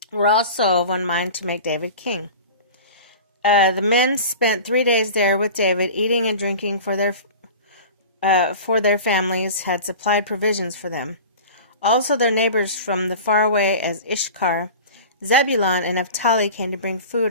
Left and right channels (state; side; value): inverted; both; correlation -0.36